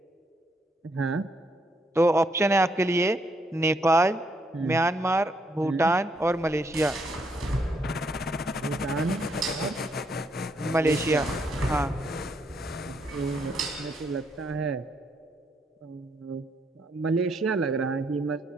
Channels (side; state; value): both; normal; correlation 0.74